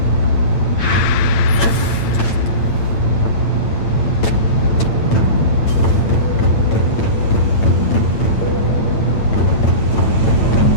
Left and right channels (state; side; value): late; right; 8.9 ms